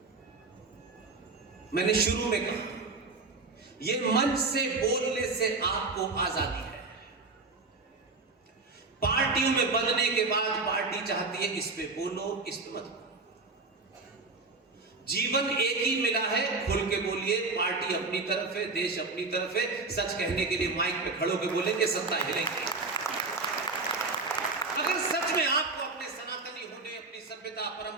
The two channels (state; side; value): quieter; left; 3.8 dB